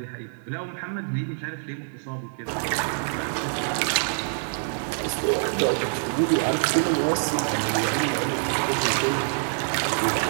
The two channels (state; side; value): silent; left; digital silence